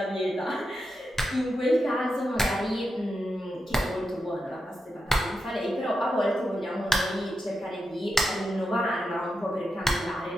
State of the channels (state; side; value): normal; both; correlation 0.87